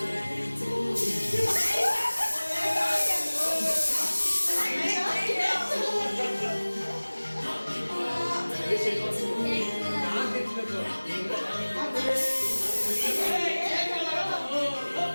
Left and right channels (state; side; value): inverted; both; correlation -1.00